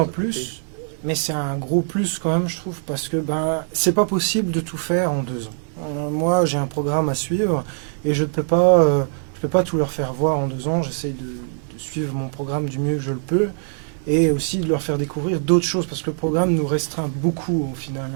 plus, mais c'est un gros plus quand même, je trouve, parce que c'est pas possible de tout faire en 2 ans. Moi, j'ai un programme à suivre et je peux pas tout leur faire voir en 2 ans. J'essaie de suivre mon programme du mieux que je le peux et aussi de leur faire découvrir d'autres choses parce que le programme nous restreint beaucoup au final,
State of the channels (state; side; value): silent; left; 64 dB below the other